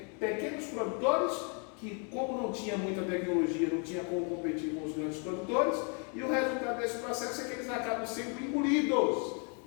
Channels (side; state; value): right; quieter; 38.3 dB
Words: pequenos produtores que, como não tinha muita tecnologia, não tinha como competir com os grandes produtores, e o resultado desse processo é que eles acabam sendo engolidos